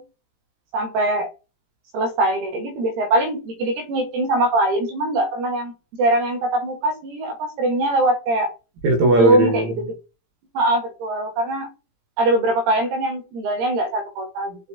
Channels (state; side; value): late; left; 17 ms